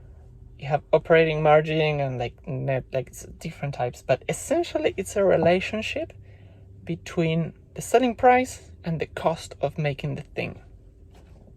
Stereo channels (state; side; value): identical; both; correlation 1.00